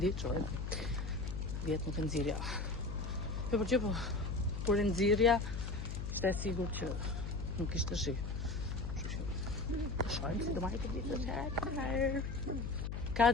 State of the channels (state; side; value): noise; left; hum, 4 dB below the sound